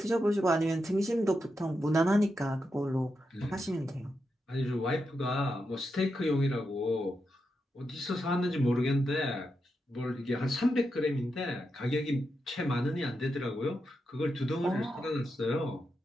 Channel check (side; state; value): both; normal; correlation 0.86